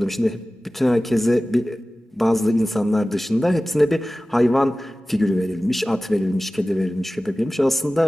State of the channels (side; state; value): both; normal; correlation 0.96